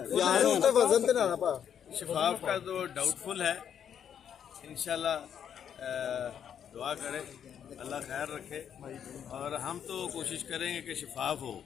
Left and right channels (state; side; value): quieter; right; 8.7 dB